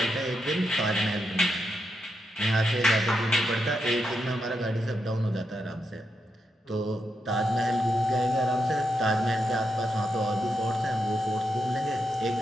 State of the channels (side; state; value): both; normal; correlation 0.84